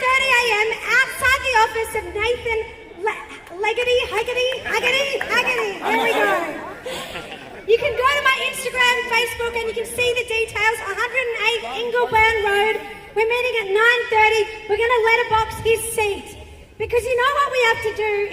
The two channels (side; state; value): both; identical; correlation 1.00